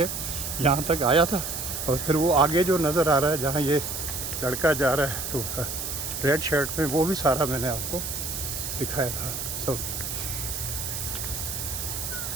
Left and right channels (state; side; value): noise; right; hiss, 4 dB below the sound